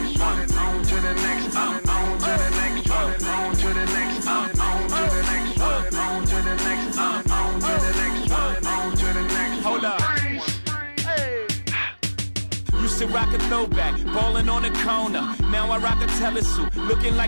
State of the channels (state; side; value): inverted; both; correlation -1.00